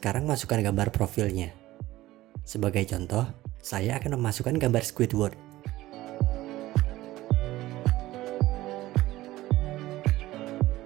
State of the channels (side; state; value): left; quieter; 16.6 dB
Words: masukkan gambar profilnya. Sebagai contoh, saya akan memasukkan gambar Squidward.